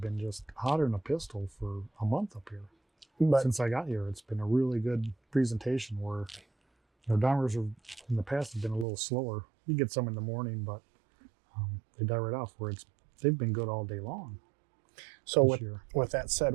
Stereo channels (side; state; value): left; drops out; at 8.8 s